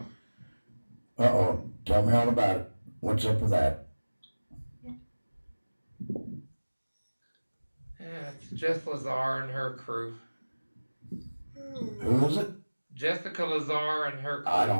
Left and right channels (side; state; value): both; inverted; correlation -1.00